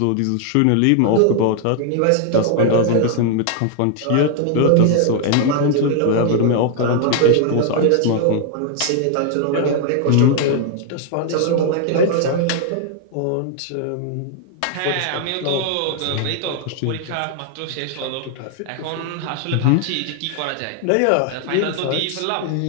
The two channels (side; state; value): both; different; correlation 0.00